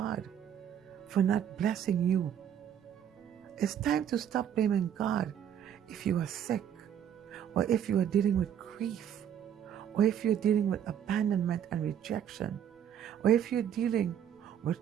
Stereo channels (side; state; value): left; quieter; 9.3 dB